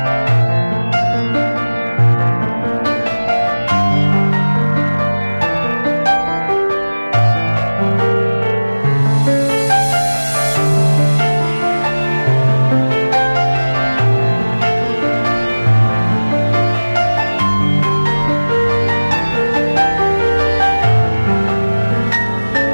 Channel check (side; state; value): both; inverted; correlation -1.00